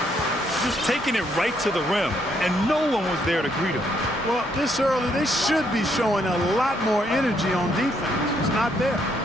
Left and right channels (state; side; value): normal; both; correlation 0.72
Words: Just taking it right to the rim, and no one was there to greet him. Well, this early, they should be showing a lot more energy on defense. It's not there.